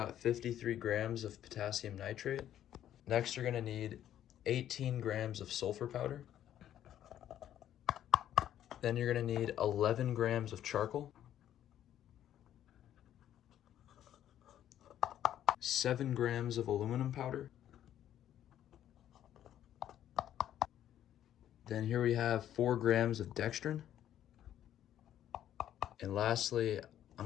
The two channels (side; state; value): right; quieter; 11.2 dB